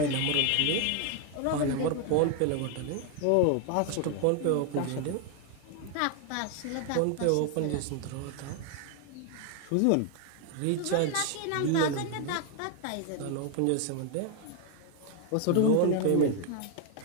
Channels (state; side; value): different; both; correlation 0.01